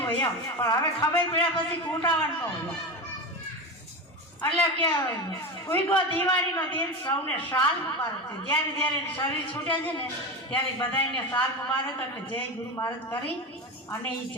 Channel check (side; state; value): both; normal; correlation 0.21